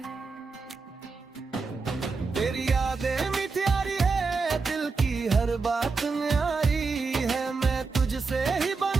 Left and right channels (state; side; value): quieter; left; 4.4 dB